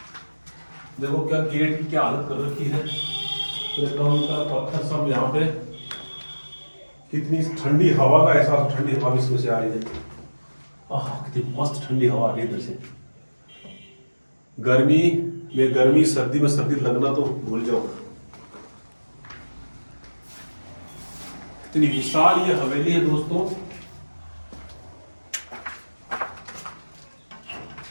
देखो क्या गेट की क्या हालत कर रखी है, पत्थर सब यहाँ पे, कितनी ठंडी हवा का एहसास, ठंडी हवा इसमें से आ रही है, कितनी मस्त ठंडी हवा आ रही है इधर से। गर्मी में गर्मी, सर्दी में सर्दी लगना तो भूल जाओ। इतनी विशाल ये हवेली है दोस्तों,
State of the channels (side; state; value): both; inverted; correlation -1.00